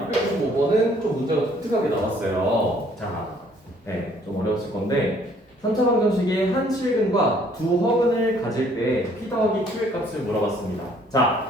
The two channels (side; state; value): both; normal; correlation 0.61